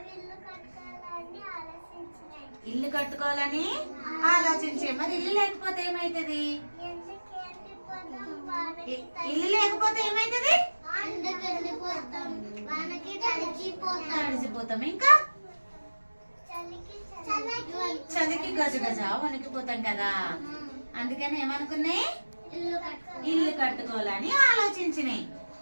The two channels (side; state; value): both; inverted; correlation -1.00